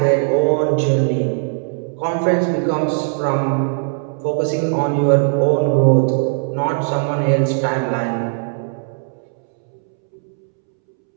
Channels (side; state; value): left; silent; 67 dB below the other